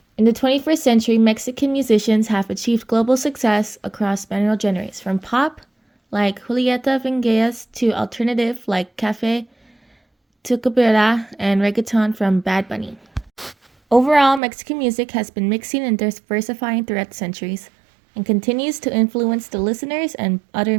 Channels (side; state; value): left; drops out; at 14.4 s